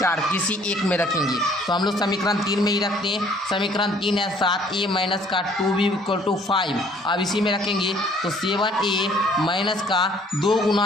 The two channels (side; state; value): both; normal; correlation 0.58